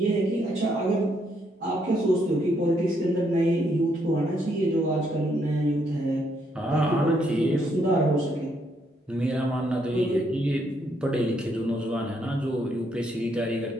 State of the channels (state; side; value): normal; both; correlation 0.74